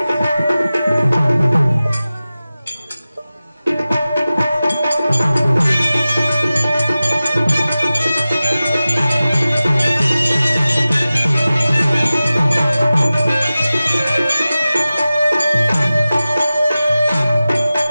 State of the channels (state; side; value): inverted; both; correlation -0.96